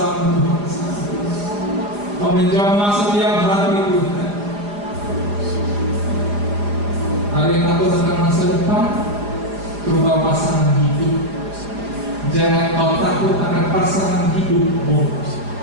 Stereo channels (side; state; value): left; late; 4.9 ms